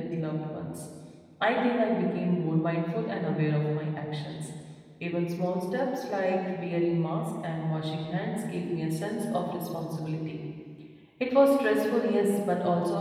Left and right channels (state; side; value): identical; both; correlation 1.00